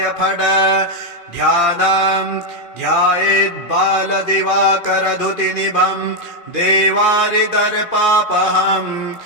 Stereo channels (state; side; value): late; right; 2.5 ms